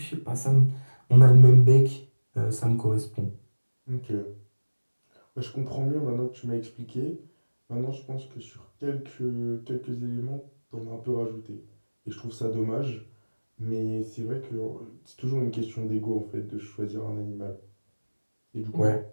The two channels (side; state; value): both; inverted; correlation -1.00